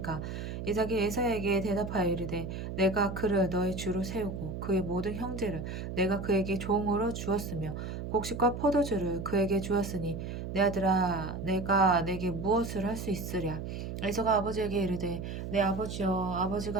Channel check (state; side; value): noise; right; hum, 6 dB below the sound